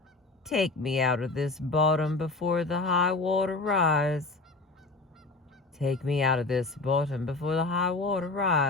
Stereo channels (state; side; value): quieter; right; 3.4 dB